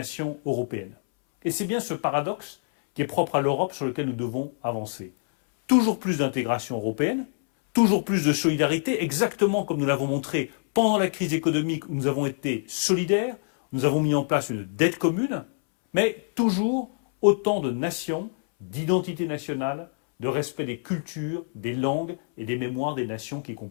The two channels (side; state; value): right; silent; 61 dB below the other